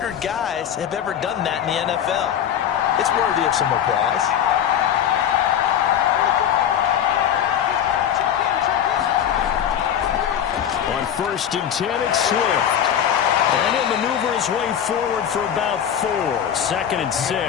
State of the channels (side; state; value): right; quieter; 9.4 dB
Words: guys have ever done that in the NFL. It's worthy of some applause. On 1st and 10, it's Swift. And he'll maneuver his way forward for about 4. 2nd and